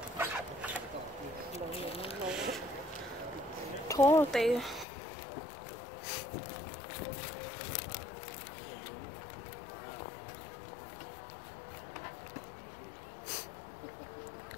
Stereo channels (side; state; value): right; drops out; at 4.9 s